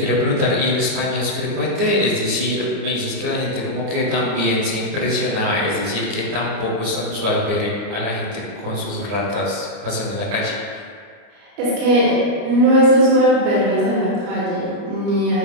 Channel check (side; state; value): left; late; 29 ms